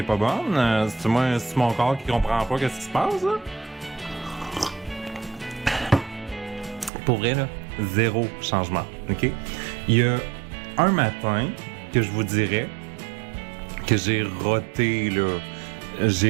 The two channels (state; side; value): drops out; left; at 6.9 s